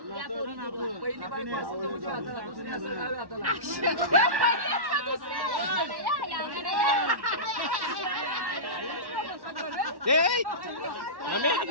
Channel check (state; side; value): late; left; 1.1 ms